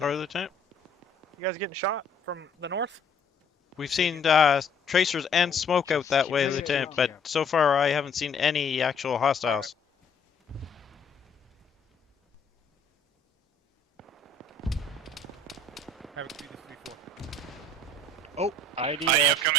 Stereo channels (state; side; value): quieter; right; 3.5 dB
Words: Lieutenant. You guys getting shot from the north? We've seen tracers and smoke out that way, Lieutenant, but so far I haven't seen any actual hostiles. Havoc 3, this 3-4. Oh, IDF. IDF